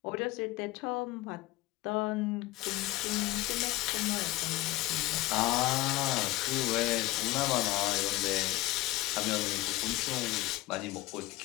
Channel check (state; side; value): quieter; right; 18.1 dB